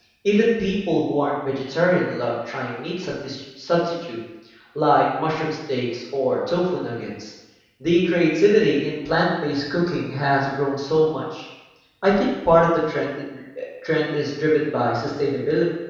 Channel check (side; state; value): both; identical; correlation 1.00